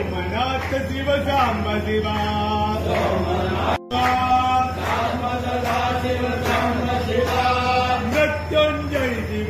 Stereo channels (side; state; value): both; identical; correlation 1.00